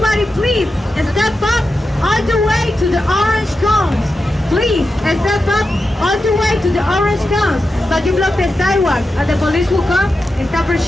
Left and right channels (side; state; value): both; normal; correlation 0.90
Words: please step up all the way to the orange cones. Please, step up all the way to the orange cones. But you block the sidewalk and the police will come and stop our